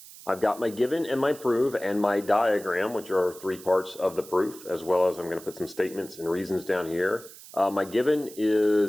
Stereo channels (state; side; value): noise; right; hiss, 18 dB below the sound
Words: I've got my given and my proof and my diagram, which are three parts of the proof, as well as I'm going to put some statements and reasons down here. My given